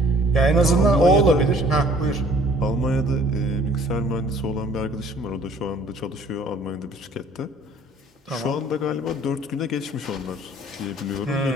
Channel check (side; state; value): both; normal; correlation 0.55